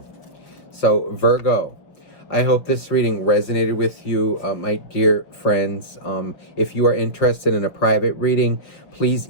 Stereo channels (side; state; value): right; late; 5.7 ms